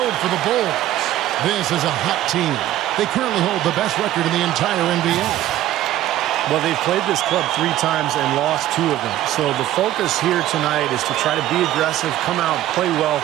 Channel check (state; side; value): quieter; left; 13.7 dB